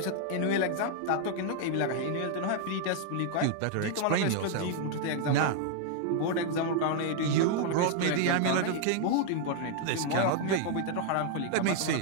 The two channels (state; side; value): different; both; correlation 0.00